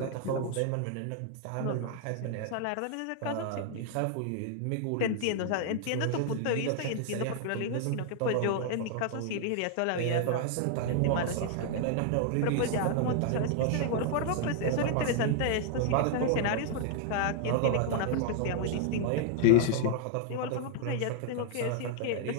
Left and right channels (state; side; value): different; both; correlation 0.00